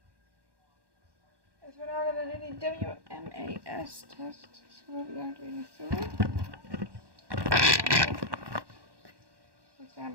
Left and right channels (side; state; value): left; late; 1.1 ms